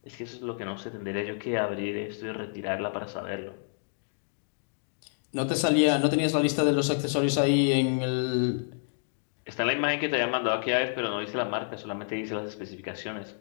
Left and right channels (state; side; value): silent; right; digital silence